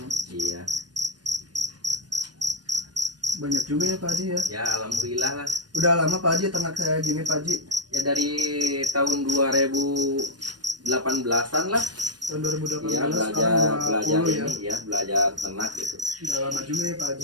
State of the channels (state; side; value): late; left; 0.69 ms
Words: Iya. Banyak juga ya Pak Haji ya? Ya alhamdulillah lah. Udah lama Pak Haji ternak saya gini Pak Haji? Ya dari tahun 2018-an lah. Tahun 2018 Iya, sekarang belajar 20 ya? ini ya, belajar ternak gitu. Udah lama juga ya Pak Haji?